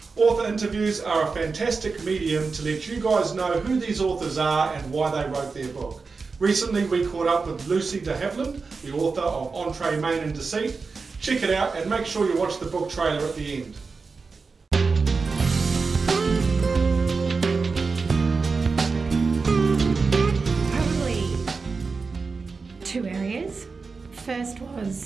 Author interviews are a fantastic medium to let you guys know who these authors are and why they wrote their book. Recently we caught up with Lucie de Havilland, the author of Entree, Main and Deceit. Check it out and make sure you watch the book trailer at the end. Probably two areas. First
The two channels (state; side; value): quieter; left; 4.5 dB